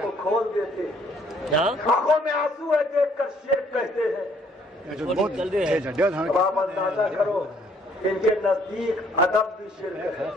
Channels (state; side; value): normal; both; correlation 0.63